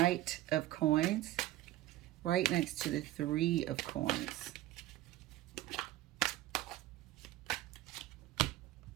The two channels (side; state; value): left; quieter; 15.4 dB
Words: of Coins right next to the Three of Coins.